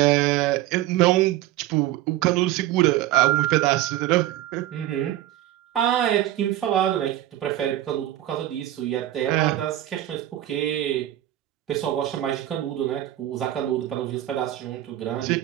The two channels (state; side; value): quieter; left; 13.8 dB